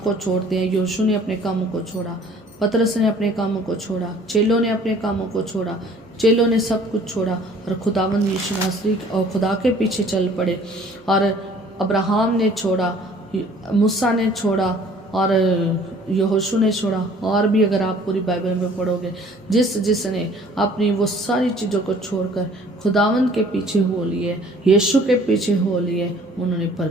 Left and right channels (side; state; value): both; normal; correlation 0.53